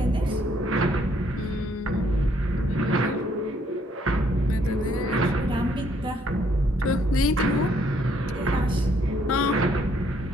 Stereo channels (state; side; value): normal; both; correlation 0.68